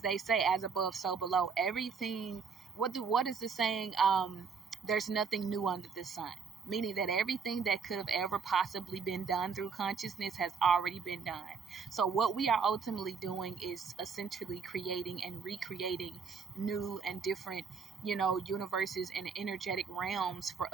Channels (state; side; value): quieter; left; 5.7 dB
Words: they say, as above, so below. Everything, what is the saying? There's nothing new under the sun. Meaning that everything that could have ever possibly been done through consciousness has already been done. So what we are ultimately doing is essentially creating and recreating new and different, universes and energetic realms for